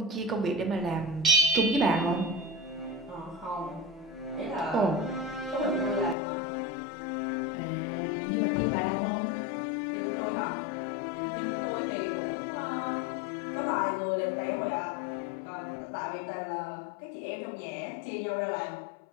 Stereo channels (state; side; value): drops out; right; at 6.2 s